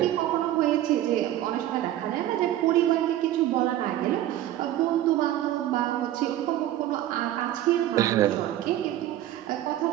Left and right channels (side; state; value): left; quieter; 13.3 dB